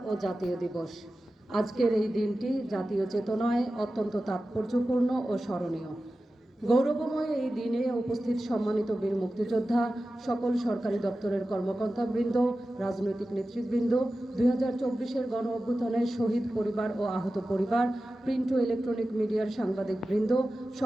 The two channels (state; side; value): normal; both; correlation 0.94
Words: ও জাতীয় দিবস। আজকের এই দিনটি জাতীয় চেতনায় অত্যন্ত তাৎপর্যপূর্ণ ও স্মরণীয়। গৌরবময় এই দিনে উপস্থিত সম্মানিত বীর মুক্তিযোদ্ধা, সকল সরকারি দপ্তরের কর্মকর্তাবৃন্দ, রাজনৈতিক নেতৃবৃন্দ, 2024-এর গণ অভ্যুত্থানে শহীদ পরিবার ও আহত পরিবার, প্রিন্ট ও ইলেকট্রনিক মিডিয়ার সাংবাদিকবৃন্দ,